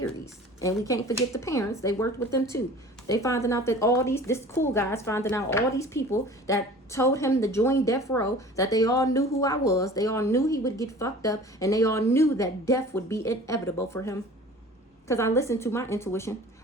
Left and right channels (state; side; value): normal; both; correlation 0.43